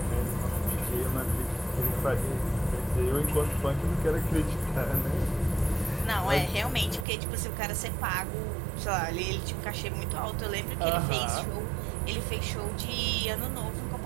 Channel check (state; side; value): drops out; left; at 7.1 s